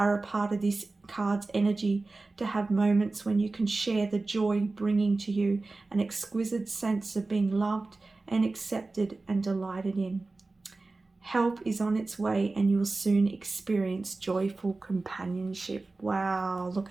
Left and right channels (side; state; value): left; quieter; 3.4 dB